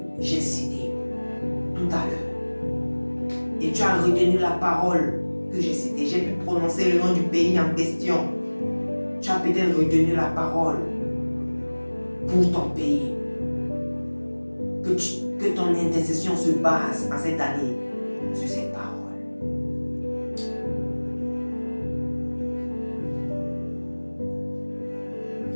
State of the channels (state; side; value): inverted; both; correlation -1.00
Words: j'ai cité tout à l'heure. Et tu as retenu la parole que j'ai citée. J'ai pu prononcer le nom du pays en question. Tu as peut-être retenu la parole pour ton pays. Que ton intercession se base en cette année sur cette parole.